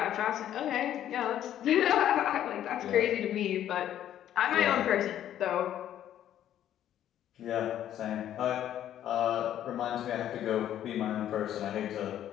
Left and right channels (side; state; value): right; quieter; 11.3 dB